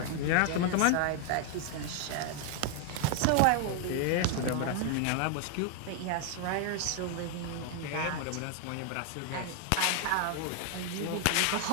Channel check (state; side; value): different; both; correlation 0.00